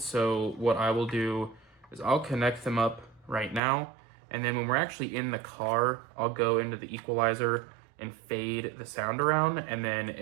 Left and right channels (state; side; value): drops out; left; at 3.6 s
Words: So what I will do is I'll connect them up right now. And then when we're actually in the car, I'll go into the equalizer and fade the sound around. And then